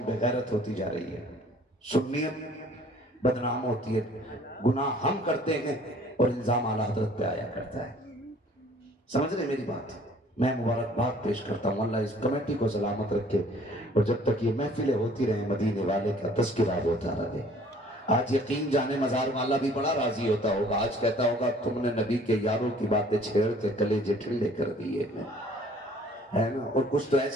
बेगैरत होती जा रही है, सुन्नियत बदनाम होती है, गुनाह हम करते हैं और इल्जाम आला हजरत पे आया करता है। समझ रहे मेरी बात? मैं मुबारकबाद पेश करता हूँ, अल्लाह इस कमेटी को सलामत रखे और जब तक ये महफिलें होती रहे मदीने वाले का तज़किरा होता रहे। आज यकीन जाने मजार वाला भी बड़ा राजी होता होगा, आज कहता होगा तुमने नबी के यारों की बातें छेड़ के कलेजे ठंडे कर दिए है ना। और कुछ तो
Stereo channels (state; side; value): normal; both; correlation 0.55